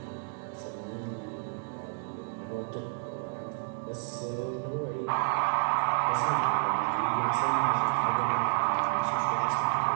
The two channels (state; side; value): silent; left; 58 dB below the other